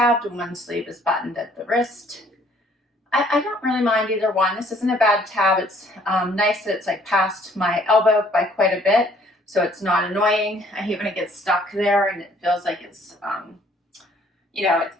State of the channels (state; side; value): normal; both; correlation 0.60